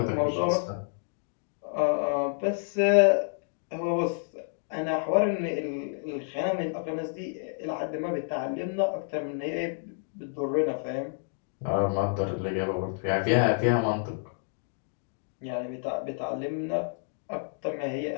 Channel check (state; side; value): silent; right; digital silence